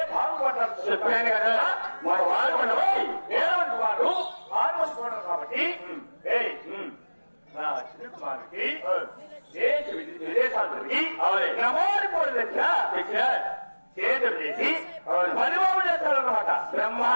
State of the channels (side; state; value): both; inverted; correlation -1.00